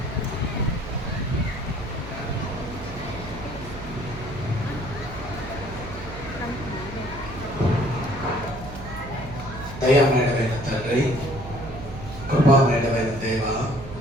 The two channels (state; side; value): noise; right; hum, 12 dB below the sound